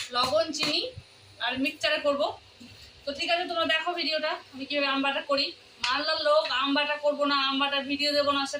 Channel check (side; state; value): both; identical; correlation 1.00